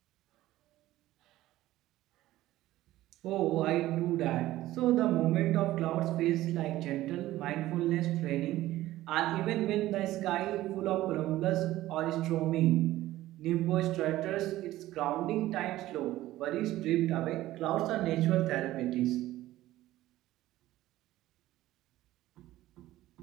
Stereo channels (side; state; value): left; quieter; 15.6 dB